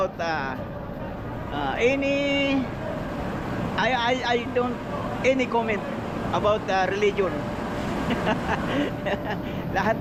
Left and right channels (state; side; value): identical; both; correlation 1.00